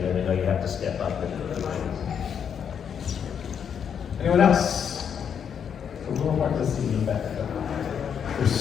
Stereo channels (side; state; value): right; quieter; 7.7 dB